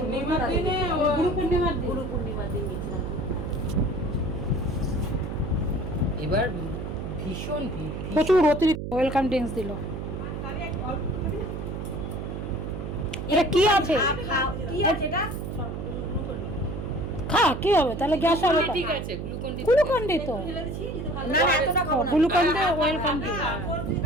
পূর্ণিমার দিনে, গুরু পূর্ণিমার দিন গেছিলাম। এবার ভীষণ ভিড়, প্রচুর অতিরিক্ত ওয়েলকাম ড্রিঙ্কস দিল। এটা কি আছে? খা, কি হবে তাহলে, গ্যাস হবে? ঠিক আছে, গ্লুকন ডি তো না না, এতটা খাও না। Glucon D welcome D.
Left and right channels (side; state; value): right; noise; hum, 6 dB below the sound